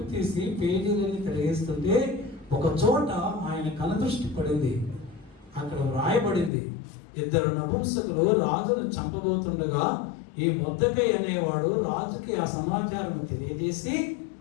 తీసి పేజీలన్నీ తిరిగేస్తుంటే ఒక చోట ఆయన కనుదృష్టి పడింది. అక్కడ వ్రాయబడింది, 2 నపుంసకులు రాజును చంపబోతుండగా ఈ మొర్దెకై అనేవాడు రాజుకి ఆ సమాచారం తెలియజేసి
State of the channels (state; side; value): drops out; right; at 6.5 s